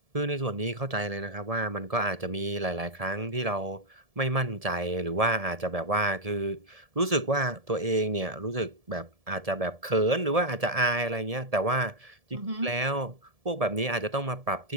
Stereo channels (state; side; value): late; left; 1.7 ms